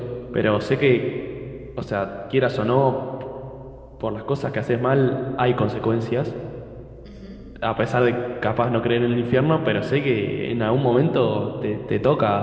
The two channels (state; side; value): identical; both; correlation 1.00